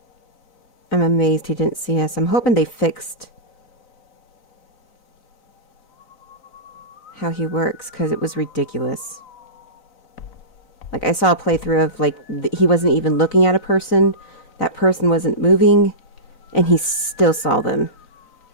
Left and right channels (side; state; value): right; late; 4.0 ms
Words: I'm amazed he didn't see us. I'm hoping they fixed how he works, because it was ridiculous. Like, I saw a playthrough of, like, he wasn't even looking at a person. That person wasn't moving, and he still saw them.